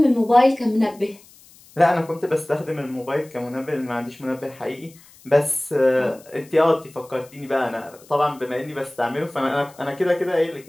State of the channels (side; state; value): left; noise; hiss, 25 dB below the sound